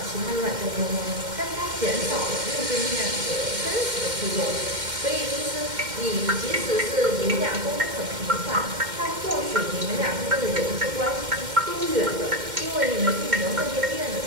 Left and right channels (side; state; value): left; late; 2.1 ms